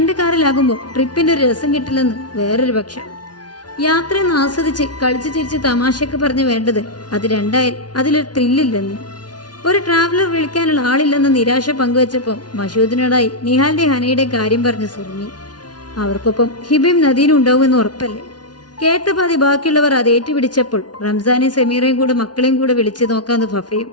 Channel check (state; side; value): late; right; 0.69 ms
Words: കാറിലാകുമ്പോൾ ട്രിപ്പിന്റെ ഒരു രസം കിട്ടില്ലെന്ന് വേറൊരു പക്ഷം. യാത്രയൊന്ന് ആസ്വദിച്ച് കളിച്ചു ചിരിച്ച് തമാശയൊക്കെ പറഞ്ഞ് വേണ്ടത് അത് 2 ആയാൽ അതിലൊരു ത്രില്ലില്ലെന്ന്. ഒരു ട്രാവലർ വിളിക്കാനുള്ള ആളില്ലെന്ന നിരാശ പങ്കുവച്ചപ്പോൾ മഷൂദിനോടായി നിഹാലിന്റെ ഹനയുടെ കാര്യം പറഞ്ഞു സുറുമി. അവർക്കൊപ്പം ഹിബയും നദീനും ഉണ്ടാവുമെന്ന് ഉറപ്പല്ലേ? കേട്ട പാതി ബാക്കിയുള്ളവർ അത് ഏറ്റുപിടിച്ചപ്പോൾ റംസാനെയും സമീറയും കൂടെ മക്കളെയും കൂടെ വിളിച്ചു നോക്കാന്ന് ഫഫയും.